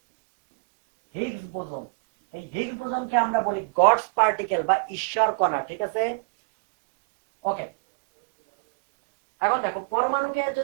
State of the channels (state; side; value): quieter; left; 35.1 dB